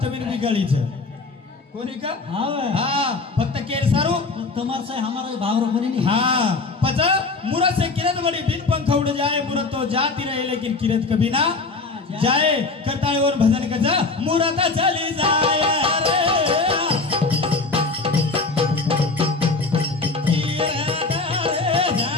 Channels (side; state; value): right; quieter; 3.8 dB